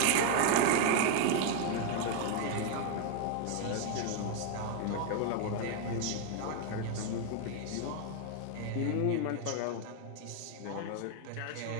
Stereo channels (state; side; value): different; both; correlation 0.00